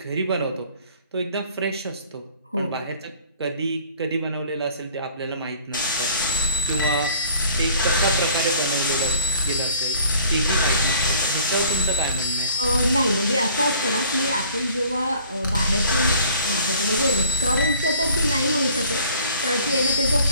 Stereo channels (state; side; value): inverted; both; correlation -0.52